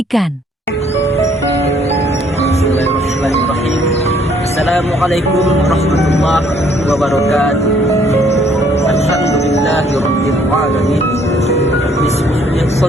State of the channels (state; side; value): normal; both; correlation 0.64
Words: Bismillahirrahmanirrahim. Assalamualaikum warahmatullahi wabarakatuh. Alhamdulillahirabbil alamin. Bismillahirrahmanirrahim.